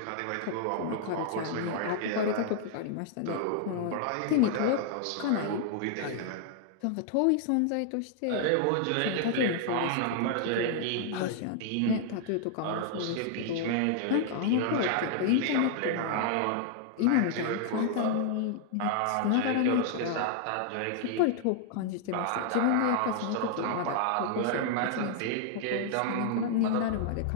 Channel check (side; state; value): both; different; correlation 0.00